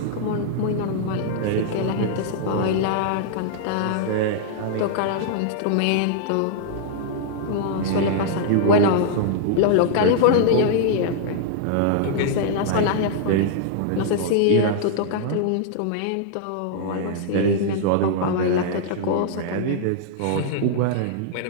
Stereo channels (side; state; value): both; different; correlation -0.01